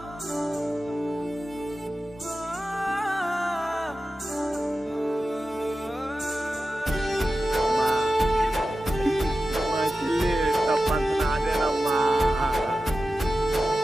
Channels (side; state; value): both; normal; correlation 0.93